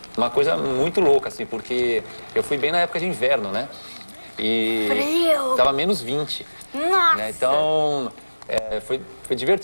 uma coisa muito louca, assim, porque eu fui bem na época de inverno, né? E frio! Tava menos 20. Nossa! Né? Então, foi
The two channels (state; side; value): inverted; both; correlation -1.00